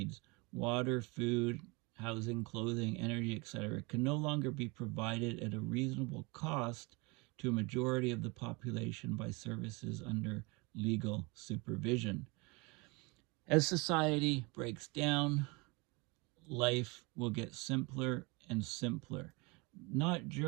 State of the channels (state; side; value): quieter; left; 27.3 dB